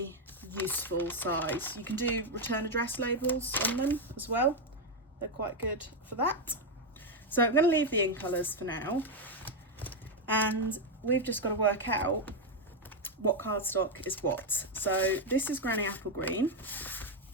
useful size. You can do return address labels on them as well. They're quite good for that. So I'm going to leave the in colours for now, and we've just got to work out what cardstock is what. So this is Granny Apple Green,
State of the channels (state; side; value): normal; both; correlation 0.04